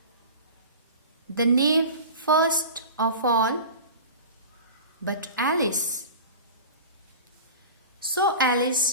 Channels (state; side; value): inverted; both; correlation -0.35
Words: The knave first of all, but Alice. So